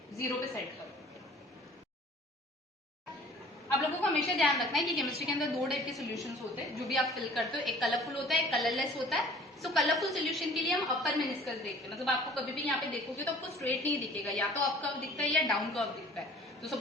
जीरो पे सेट करो। आप लोगों को हमेशा ध्यान रखना है कि केमिस्ट्री के अंदर दो टाइप के सॉल्यूशंस होते हैं जो भी आप फिल करते हो, एक कलरफुल होता है, एक कलरलेस होता है। सो कलरफुल सॉल्यूशन के लिए हम अपर मेनिस्कस देखते हैं, मतलब आपको कभी भी यहाँ पे देखोगे तो आपको स्ट्रेट नहीं दिखेगा, या तो अप कर्व दिखता है या डाउन कर्व दिखता है। तो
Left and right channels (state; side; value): normal; both; correlation 0.50